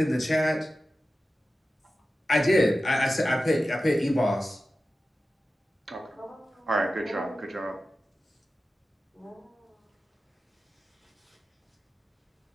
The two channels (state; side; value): normal; both; correlation 0.94